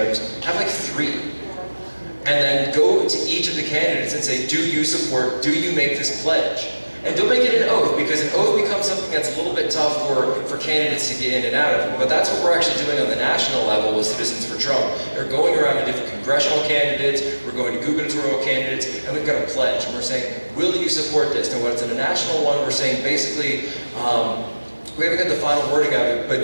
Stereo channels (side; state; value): both; inverted; correlation -1.00